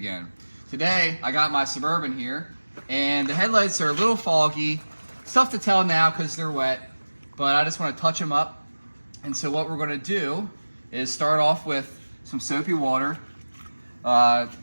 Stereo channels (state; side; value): inverted; both; correlation -1.00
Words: Today, I got my Suburban here, and the headlights are a little foggy. It's tough to tell now because they're wet, but I just want to touch them up. And so what we're going to do is start off with some soapy water,